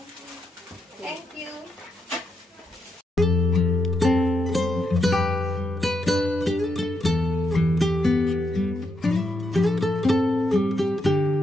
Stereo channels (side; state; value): both; normal; correlation 0.82